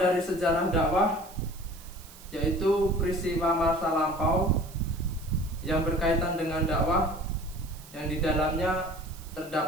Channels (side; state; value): right; noise; hiss, 20 dB below the sound